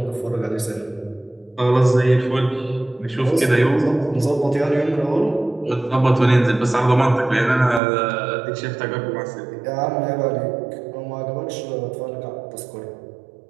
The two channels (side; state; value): left; drops out; at 7.8 s